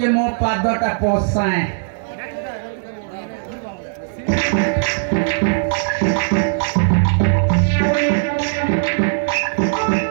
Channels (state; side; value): silent; left; 67 dB below the other